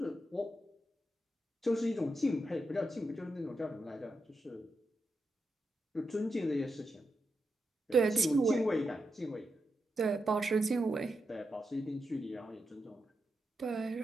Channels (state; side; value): normal; both; correlation 0.86